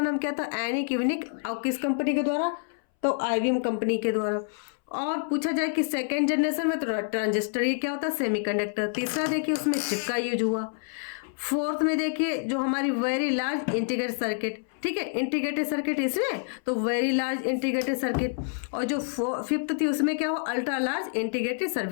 क्या था, एनिक, यूनिक, और किस कंपनी के द्वारा, तो आईबीएम कंपनी के द्वारा। और पूछा जाए कि सेकेंड जनरेशन में तो ट्रांजिस्टर, ये क्या होता है, सेमीकंडक्टर। तीसरा देखिए उसमें चिप का यूज हुआ। फोर्थ में देखिए जो हमारी वेरी लार्ज इंटीग्रेटेड सर्किट, ठीक है, इंटीग्रेटेड सर्किट इसमें, तो वेरी लार्ज इंटीग्रेटेड सर्किट। और जो फिफ्थ थी उसमें क्या हुआ, अल्ट्रा लार्ज इंटीग्रेटेड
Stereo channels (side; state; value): right; silent; 60 dB below the other